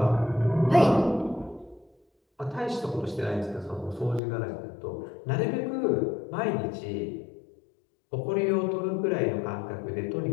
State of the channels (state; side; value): drops out; right; at 4.2 s